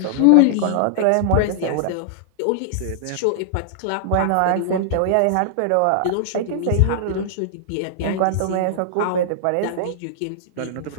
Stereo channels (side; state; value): both; different; correlation -0.01